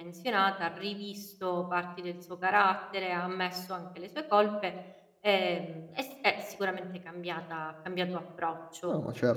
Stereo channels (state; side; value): identical; both; correlation 1.00